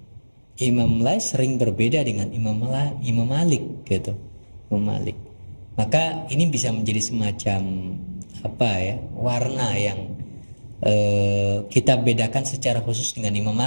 Imam Laits sering berbeda dengan Imam Malik gitu, Imam Malik. Maka ini bisa menjadi semacam warna yang kita bedakan secara khusus dengan Imam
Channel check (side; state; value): both; inverted; correlation -1.00